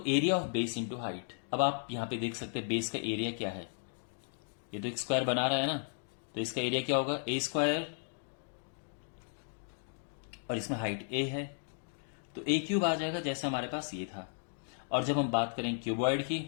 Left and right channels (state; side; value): silent; right; digital silence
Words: area of base into height. अब आप यहां पे देख सकते हैं बेस का एरिया क्या है, ये तो एक स्क्वायर बना रहा है ना, तो इसका एरिया क्या होगा? ए स्क्वायर, और इसमें हाइट ए है, तो ए क्यूब आ जाएगा जैसे हमारे पास ये था। और जब हम बात करें क्यूबॉइड की,